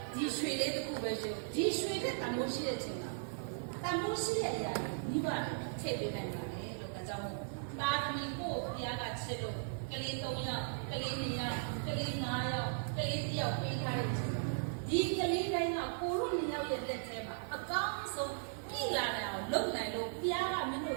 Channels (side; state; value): left; silent; digital silence